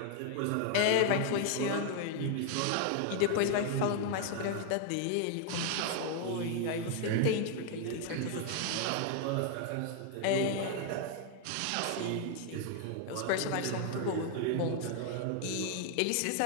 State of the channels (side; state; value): both; different; correlation 0.00